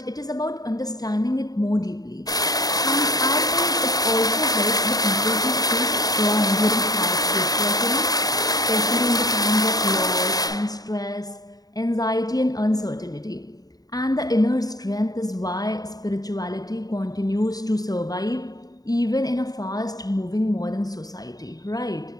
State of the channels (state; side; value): late; right; 0.18 ms